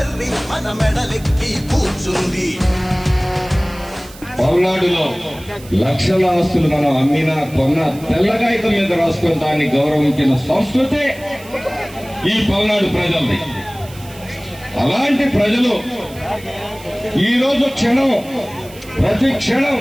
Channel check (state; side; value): noise; right; hiss, 20 dB below the sound